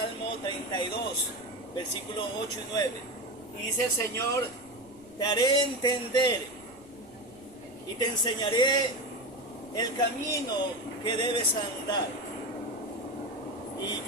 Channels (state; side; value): noise; right; rumble, 26 dB below the sound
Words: 32, versículos 8 y 9. Y dice el Señor: te haré entender y te enseñaré el camino que debes andar. Y